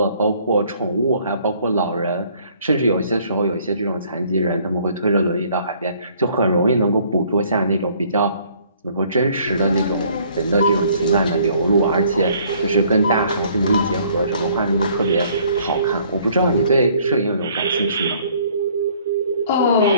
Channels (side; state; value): both; inverted; correlation -0.60